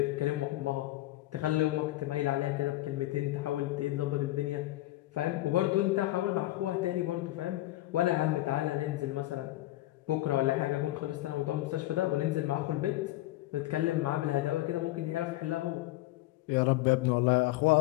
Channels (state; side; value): quieter; right; 17.0 dB